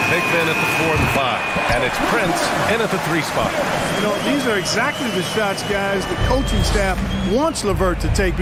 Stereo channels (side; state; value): both; identical; correlation 1.00